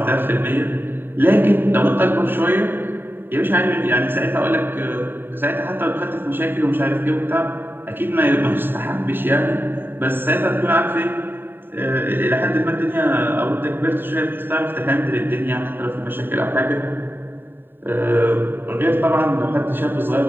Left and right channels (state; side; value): late; left; 0.097 ms